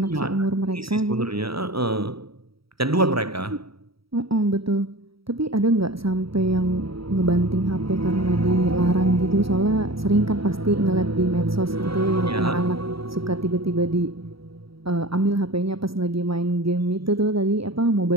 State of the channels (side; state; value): left; late; 0.76 ms